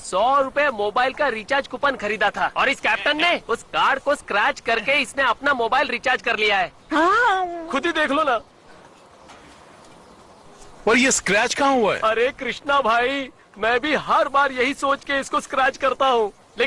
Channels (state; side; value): identical; both; correlation 1.00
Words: 100 रुपए मोबाइल का रिचार्ज कूपन खरीदा था और इस कैप्टन ने उस कार्ड को स्क्रैच करके इसने अपना मोबाइल रिचार्ज कर लिया है। खुद ही देख लो ना। और ये स्क्रैच कहाँ हुआ है? अरे कृष्णा भाई, मैं भी हर बार यही सोच के इसको स्क्रैच करता हूँ,